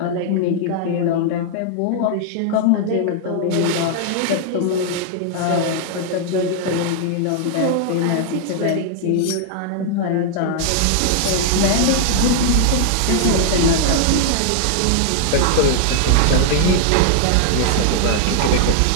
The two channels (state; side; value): different; both; correlation 0.00